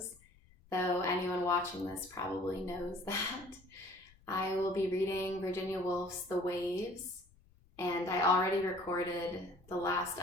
though anyone watching this probably knows that. I will be reading Virginia Woolf's The Waves, and I already recorded the last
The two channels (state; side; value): noise; left; rumble, 28 dB below the sound